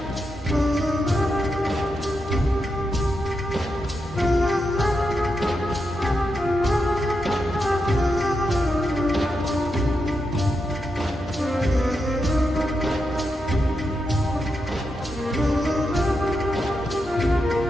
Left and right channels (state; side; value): normal; both; correlation 0.86